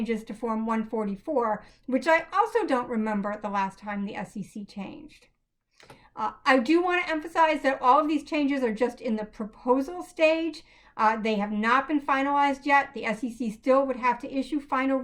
to Form 144, which I also don't remember the last time the SEC changed. I do want to emphasize that all of these changes are just in the proposal stage. They have not been finalized yet. The SEC still would have to issue final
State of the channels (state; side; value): identical; both; correlation 1.00